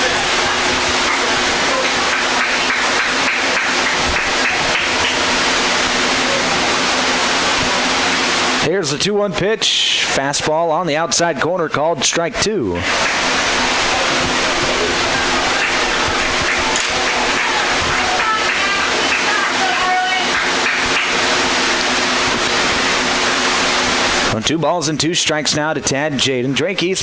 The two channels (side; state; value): both; identical; correlation 1.00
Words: Here's the 2-1 pitch. Fastball on the outside corner called strike 2. On 2 balls and 2 strikes now to Tad Jaden. Drake